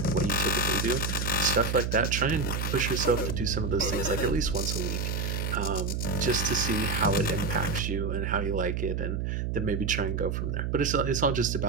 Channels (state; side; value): noise; right; hum, 1 dB below the sound